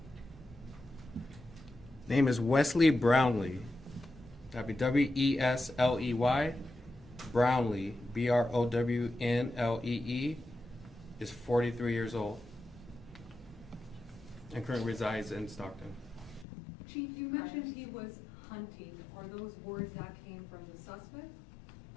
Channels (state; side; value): drops out; right; at 16.4 s